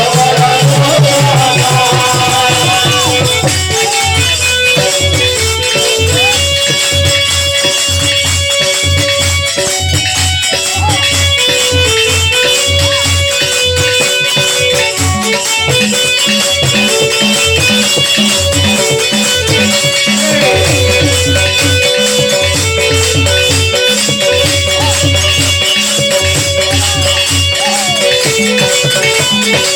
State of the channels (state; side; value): identical; both; correlation 1.00